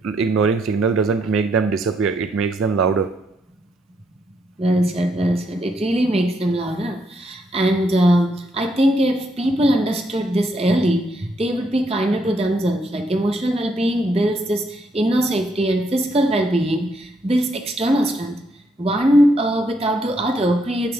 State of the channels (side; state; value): both; normal; correlation 0.75